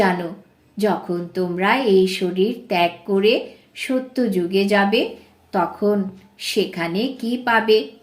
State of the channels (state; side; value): identical; both; correlation 1.00